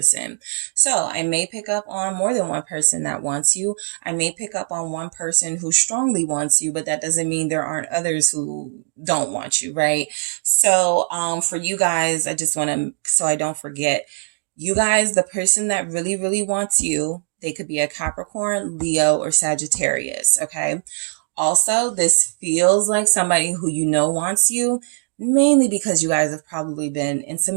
So I may pick up on more than one person that wants you. I may pick up on one person who strongly wants you, but that doesn't mean there aren't others who don't want you, right? So for you guys, I just want to, so I don't forget, you guys, the person that really, really wants you, they could be a Capricorn, Leo, or Sagittarius, okay? Also, this feels like somebody who you know wants you, mainly because you guys have probably been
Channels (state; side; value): silent; left; digital silence